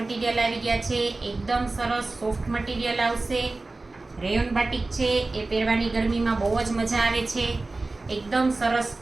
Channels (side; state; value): left; quieter; 3.3 dB